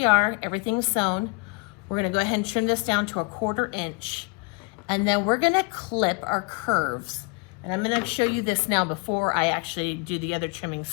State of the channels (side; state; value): right; quieter; 30.4 dB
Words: are, everything's sewn. We're going to go ahead and trim this down to a 1/4 inch, and then we're going to clip our curves. And I'm going to show you this now before I actually do the other trimming,